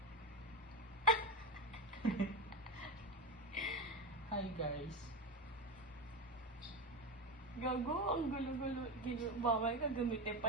Hi guys. Gago, ang gulo-gulo. Bawal ka gamitin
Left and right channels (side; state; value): both; normal; correlation 0.17